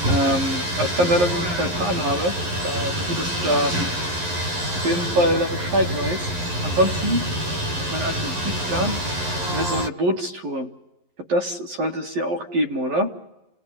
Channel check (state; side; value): late; left; 11 ms